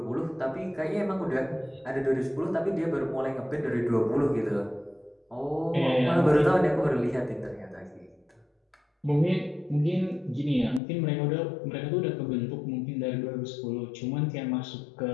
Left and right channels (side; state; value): right; drops out; at 10.8 s